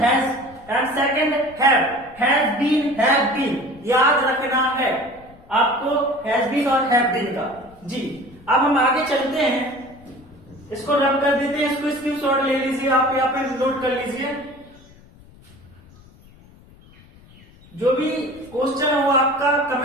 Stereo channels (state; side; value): noise; left; rumble, 24 dB below the sound